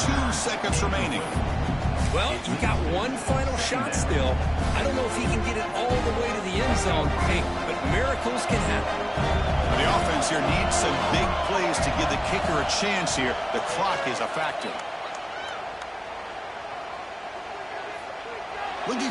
2 seconds remaining. Well, you got one final shot still. I don't know if he can get it all the way to the end zone, hey, but miracles can happen. The offense here needs some big plays to give the kicker a chance here. The clock is a factor. Looking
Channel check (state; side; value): identical; both; correlation 1.00